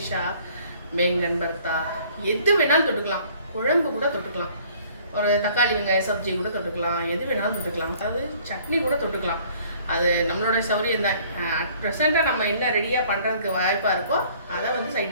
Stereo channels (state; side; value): inverted; both; correlation -0.56